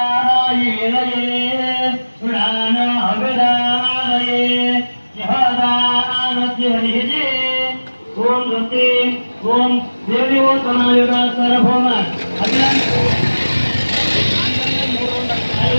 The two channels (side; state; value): both; inverted; correlation -1.00